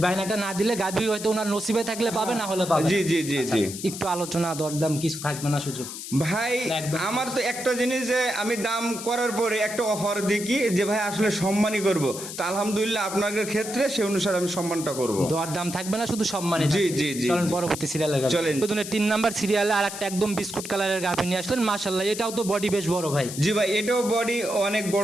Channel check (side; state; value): left; noise; hiss, 9 dB below the sound